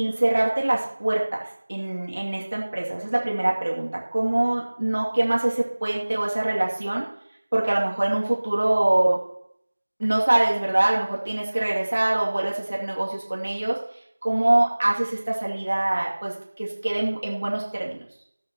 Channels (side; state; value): both; inverted; correlation -1.00